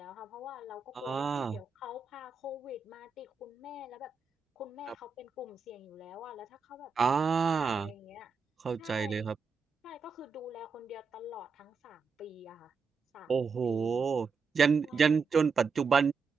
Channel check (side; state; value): left; quieter; 5.0 dB